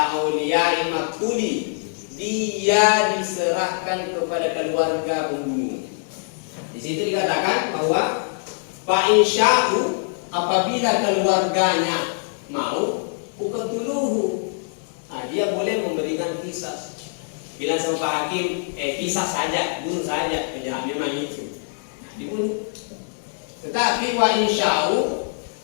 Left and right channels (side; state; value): right; silent; digital silence